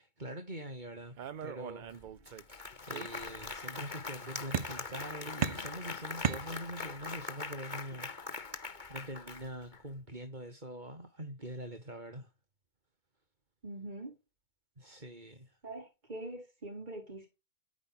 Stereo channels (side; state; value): left; late; 2.2 ms